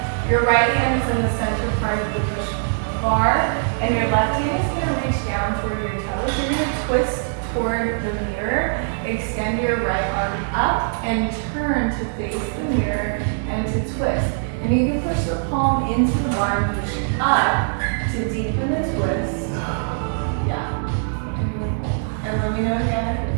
Your right hand is in the center part of the push bar, and your left hand is going to reach down toward your toes. You're going to twist toward the mirror, extend your right arm up, and turn to face the mirror and to twist. And you can push the palm into the bar and push up to deepen the twist. Yeah. And let me know again if it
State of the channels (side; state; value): left; silent; digital silence